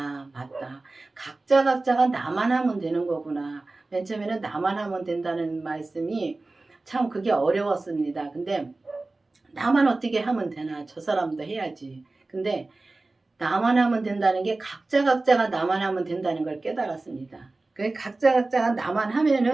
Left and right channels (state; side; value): quieter; left; 3.2 dB